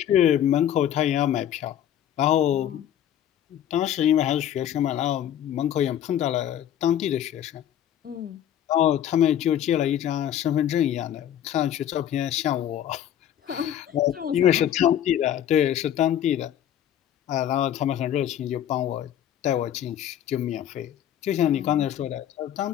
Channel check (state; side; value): quieter; right; 10.7 dB